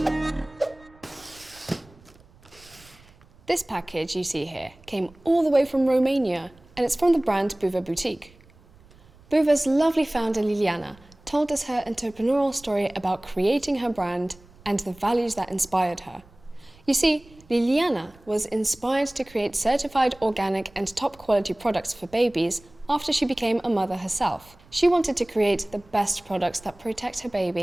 This package you see here came all the way from Romania, and it's from the brand Buva Boutique. Buva's lovely founder Liliana told us her entrepreneurial story about creating her brand and the values that inspired her. You see, Liliana was inspired to create certified organic and top quality products for babies after she became a mother herself. She wanted to create the best products that protect her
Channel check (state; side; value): noise; right; rumble, 27 dB below the sound